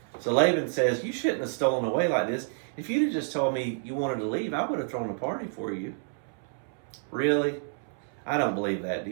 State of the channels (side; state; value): left; silent; 59 dB below the other